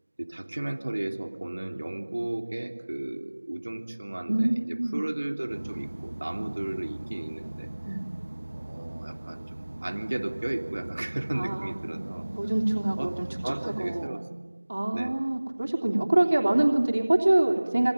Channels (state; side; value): inverted; both; correlation -1.00